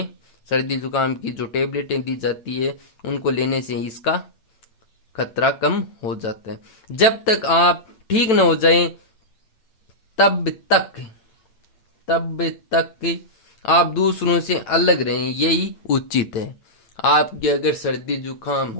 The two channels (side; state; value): right; late; 9.0 ms